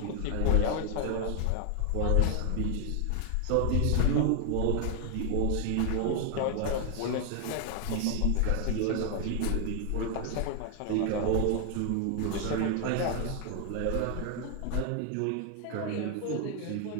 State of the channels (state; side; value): different; both; correlation 0.00